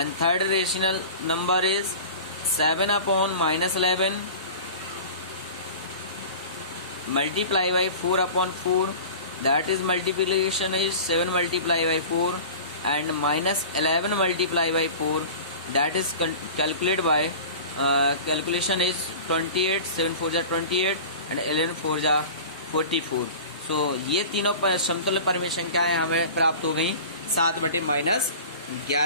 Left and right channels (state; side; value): inverted; both; correlation -0.37